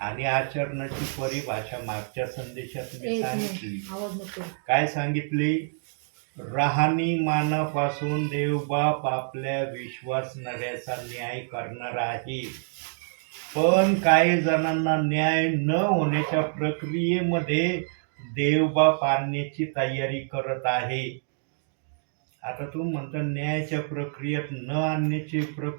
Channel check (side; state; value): left; silent; digital silence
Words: आचरणाची परिभाषा मागच्या संदेशात मी सांगितली. आवाज नको. काय सांगितली? राहणीमानापासून देवबाप आपल्या विश्वासणाऱ्याचा न्याय करणार आहे. पण काही जणांना न्याय न होण्याच्या प्रक्रियेमध्ये देवबाप आणण्याची तयारी करत आहे. आता तू म्हणता न्यायाच्या प्रक्रियेत न आणण्याची